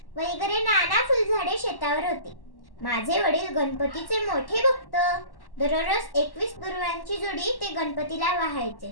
वगैरे नाना फुलझाडे शेतावर होती. माझे वडील गणपतीचे मोठे भक्त. दररोज 21 दुर्वांची जोडी ते गणपतीला वाहायचे.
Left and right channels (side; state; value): right; late; 1.1 ms